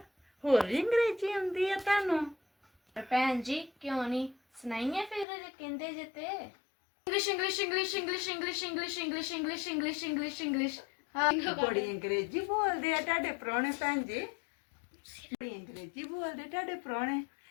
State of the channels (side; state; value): right; drops out; at 5.2 s